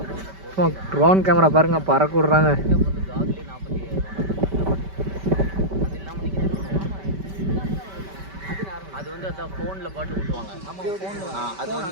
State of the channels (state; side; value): late; left; 5.2 ms